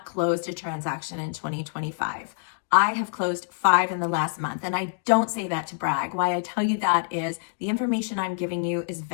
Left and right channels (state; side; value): silent; right; digital silence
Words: closed a transaction in 2025. I have closed 5 in the last month, and I don't say that to brag. Why I tell you that is the information I'm giving you is